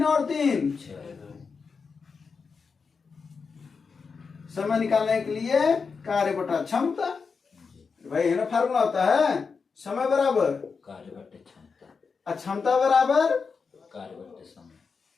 और 3। 6। समय निकालने के लिए कार्य बटा क्षमता, भाई है ना, फार्मूला होता है समय बराबर कार्य बटे क्षमता, और क्षमता बराबर कार्य बटे समय,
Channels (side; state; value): right; quieter; 5.2 dB